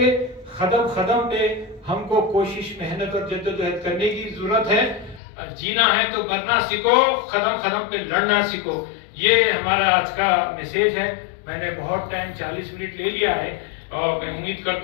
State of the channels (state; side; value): drops out; right; at 5.2 s